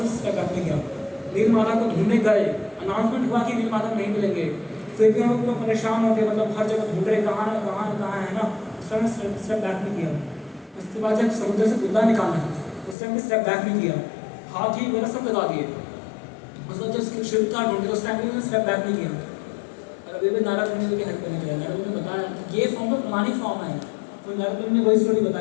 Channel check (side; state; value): right; drops out; at 13.0 s